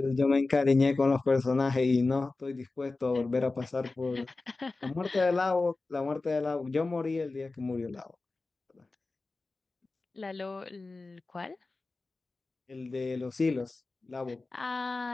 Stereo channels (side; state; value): right; quieter; 3.5 dB